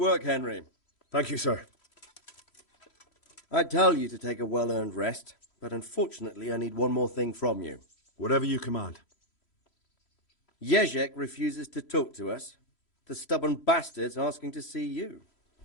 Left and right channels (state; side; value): late; right; 3.1 ms